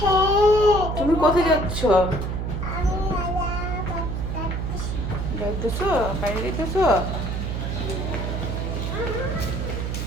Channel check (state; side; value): noise; right; hum, 2 dB below the sound